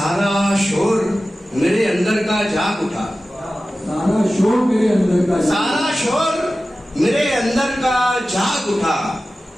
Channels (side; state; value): both; normal; correlation 0.95